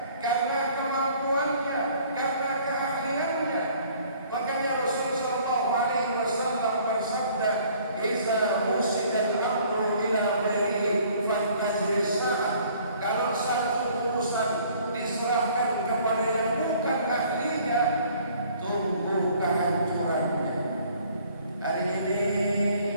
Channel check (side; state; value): both; inverted; correlation -0.57